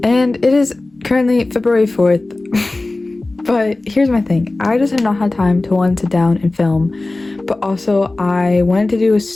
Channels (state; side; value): quieter; right; 3.0 dB